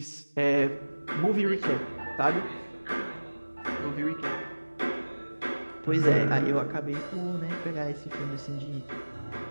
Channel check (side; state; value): both; inverted; correlation -1.00